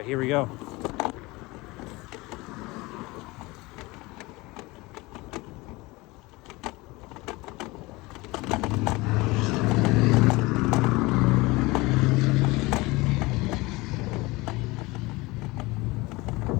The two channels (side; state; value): right; quieter; 22.4 dB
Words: here we go.